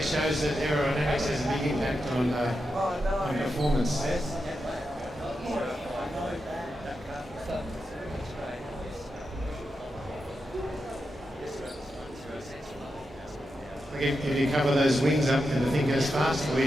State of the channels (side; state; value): both; normal; correlation 0.87